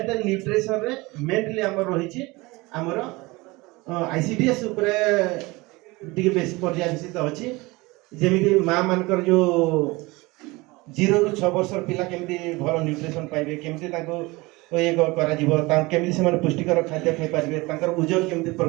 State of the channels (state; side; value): quieter; left; 22.9 dB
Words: एंड न्यूट्रिशन रे मेनली हमर रही छी हमर आईसीडीएस ऊपर टिके बेसी पर्यावसित अछि जेमिति मां मानकर जो 0 रु 6 वर्ष पिला केमिति भलो न्यूट्रिशन पाइबे केमिति ताको ये करा जीवो ता केमिति से माने पुष्टिकर खाद्य खाइ पारिबे तांकर ओजन केमिति